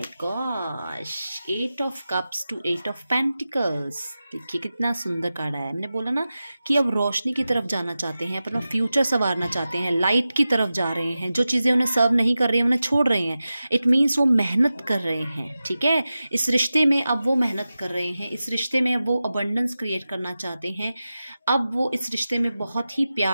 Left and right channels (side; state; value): both; inverted; correlation -0.94